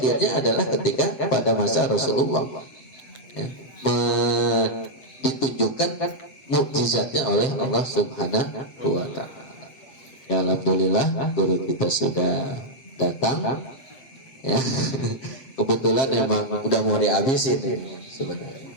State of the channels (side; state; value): right; late; 7.6 ms